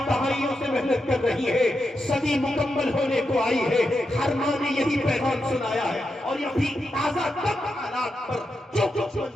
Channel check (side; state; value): both; normal; correlation 0.86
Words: دہائیوں سے محنت کر رہی ہے، صدی مکمل ہونے کو آئی ہے، ہر ماں نے یہی پیغام سنایا ہے، اور یہ بھی تازہ تب حالات پر جو کچھ